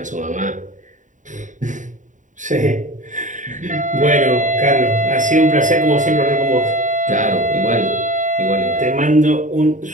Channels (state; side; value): late; left; 0.36 ms